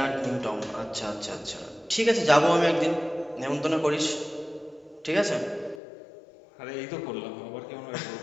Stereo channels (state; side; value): drops out; right; at 5.8 s